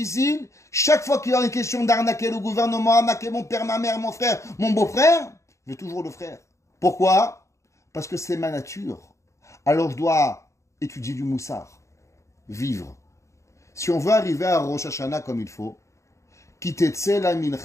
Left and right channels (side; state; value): right; late; 0.14 ms